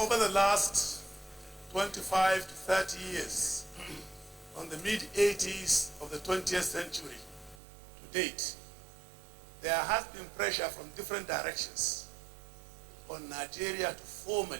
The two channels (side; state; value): left; drops out; at 7.6 s